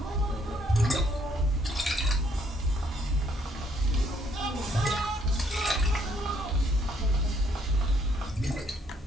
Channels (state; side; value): normal; both; correlation 0.68